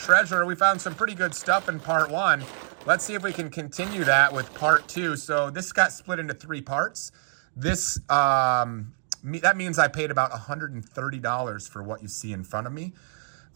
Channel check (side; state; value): left; silent; digital silence